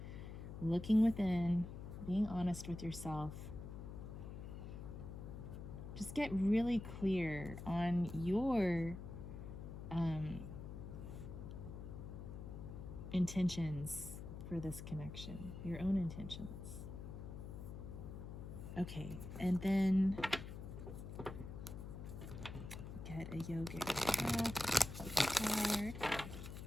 looking within, being honest with yourself. Just get really clear on your intentions for this connection, your own intentions. Okay, and then get a yogic card.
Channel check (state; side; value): noise; left; hum, 9 dB below the sound